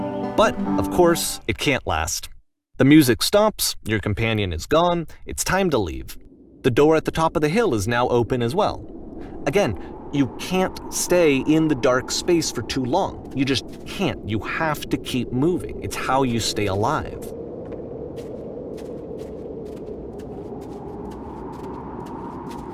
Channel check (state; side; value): identical; both; correlation 1.00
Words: But, of course, it can't last. The music stops, your companion is gone, it's time to leave. The door at the top of the hill is now open as well. Again, you can't stay in the dark space for too long. You just can't. You have to keep moving. It's how you stay alive.